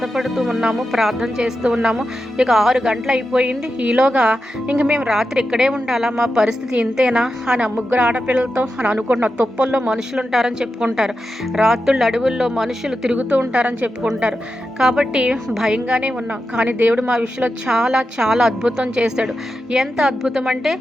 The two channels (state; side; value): normal; both; correlation 0.89